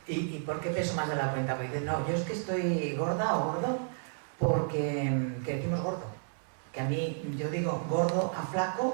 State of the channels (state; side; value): silent; left; 57 dB below the other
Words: ¿Y por qué peso más de la cuenta? Porque dicen, no, yo es que estoy gorda o gordo porque decimos gordo. Que a mí, yo digo gordo a